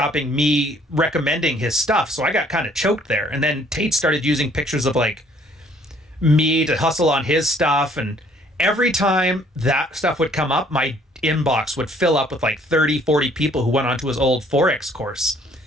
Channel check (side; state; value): both; normal; correlation 0.61